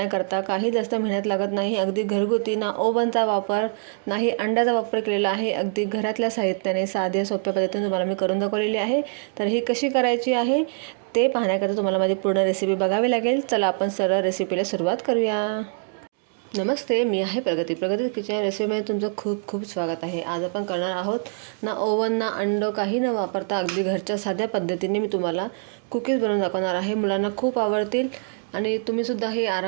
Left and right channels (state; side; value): silent; left; 62 dB below the other